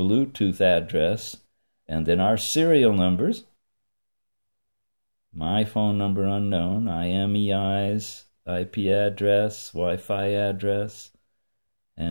address, and then our serial numbers. My phone number unknown, IMEI's IP address, Wi-Fi address,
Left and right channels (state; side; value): inverted; both; correlation -1.00